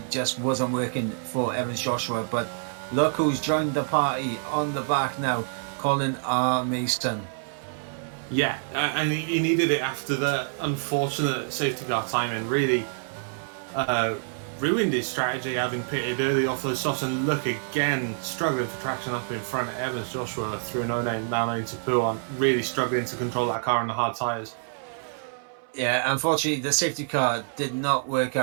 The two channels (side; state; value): left; silent; 59 dB below the other